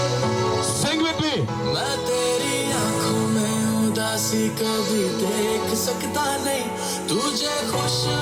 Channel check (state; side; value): identical; both; correlation 1.00